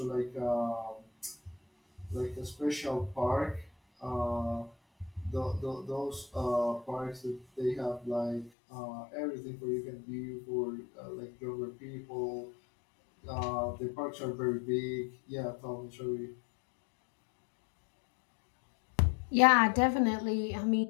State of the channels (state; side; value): drops out; right; at 8.5 s